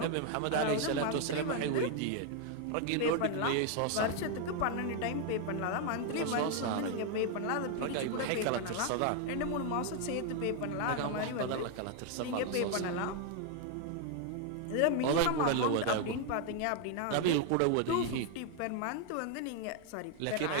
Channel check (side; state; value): both; different; correlation 0.00